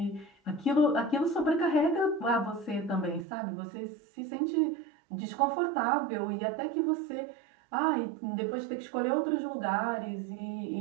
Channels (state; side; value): drops out; left; at 3.2 s